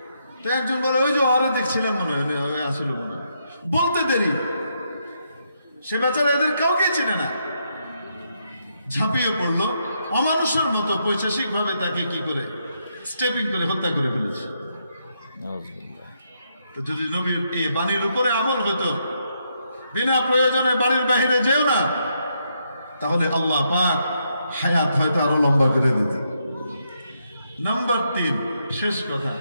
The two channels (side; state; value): both; inverted; correlation -0.78